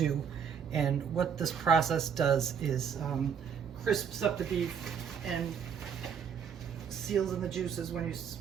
And what this process does is crisps up the beef and seals in the juices when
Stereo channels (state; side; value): quieter; left; 7.3 dB